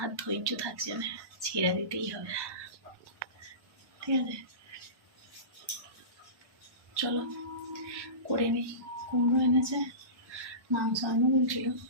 আর ধৈর্য থাকছে না, ছেড়ে দিতেই হবে, ঠিক আছে। চলো করে নিই। কুমড়ো এনেছে, মাংস আনো বলছিল,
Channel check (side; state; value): left; late; 1.1 ms